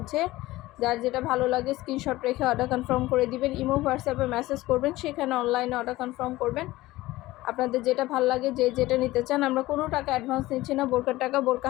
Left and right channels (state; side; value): quieter; right; 18.0 dB